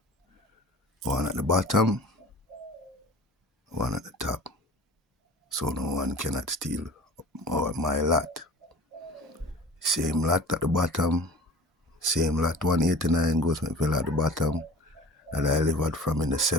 One at the bottom, one at the top. So no one cannot steal my lot. Same lot at the bottom, same lot 189 Goldsmith Villa at the bottom that I lived at from in the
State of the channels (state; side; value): normal; both; correlation 0.41